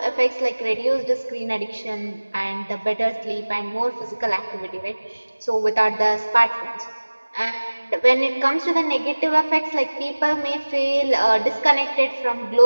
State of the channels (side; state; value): both; inverted; correlation -1.00